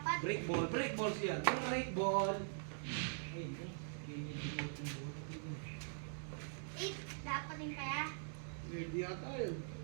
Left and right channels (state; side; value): silent; left; digital silence